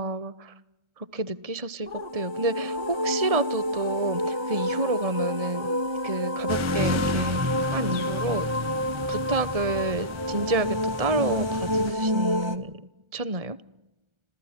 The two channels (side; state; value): left; late; 1.3 ms